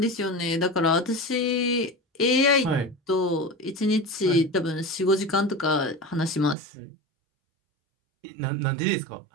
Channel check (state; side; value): drops out; left; at 6.6 s